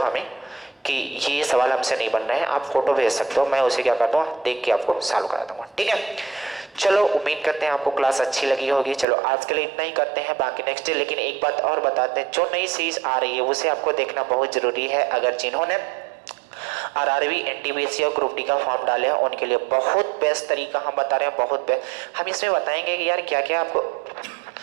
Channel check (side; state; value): left; drops out; at 9.1 s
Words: हमें कि ये सवाल हमसे नहीं बन रहे हैं। आप फोटो भेज सकते हो, मैं उसे क्या करता हूँ देख के आपको सॉल्व करा दूंगा, ठीक है। चलो उम्मीद करते हैं आपको क्लास अच्छी लगी होगी। चलो आज के लिए इतना ही करते हैं, बाकी नेक्स्ट डे। लेकिन एक बात और बताते हैं, जो नई सीरीज आ रही है उसे आपको देखना बहुत जरूरी है। अगर जिन्होंने आरआरबी एनटीपीसी और ग्रुप डी का फॉर्म डाले हैं उनके लिए बहुत बेस्ट तरीका हम बता रहे हैं, बहुत बेस्ट। हम इसमें बताएंगे कि यार क्या क्या आपको